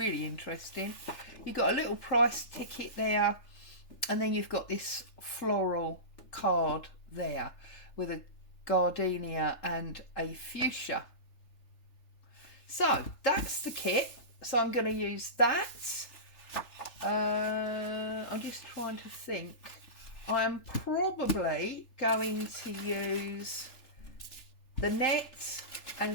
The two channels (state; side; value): late; right; 3.4 ms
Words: interesting. You've got a little price ticket there, and then you've got this floral card there with a gardenia and a fuchsia. So that's the kit. So I'm going to use that. I'm just trying to think. I'm probably going to use the net